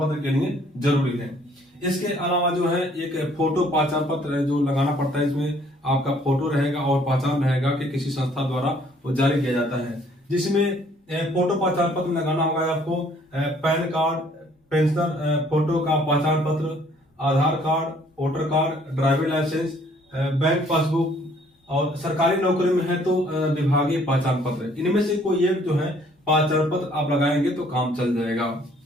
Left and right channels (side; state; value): both; normal; correlation 0.61